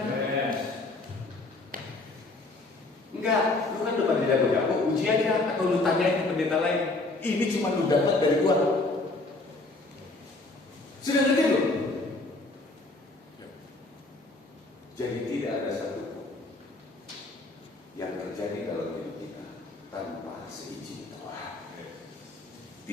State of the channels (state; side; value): quieter; right; 3.1 dB